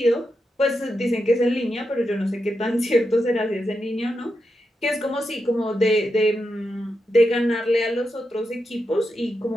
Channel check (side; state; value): both; normal; correlation 0.86